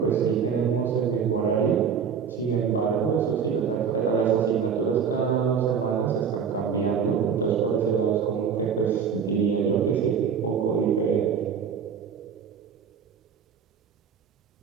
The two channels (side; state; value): left; quieter; 6.8 dB